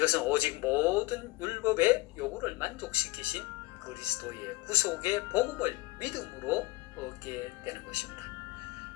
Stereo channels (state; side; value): quieter; right; 20.8 dB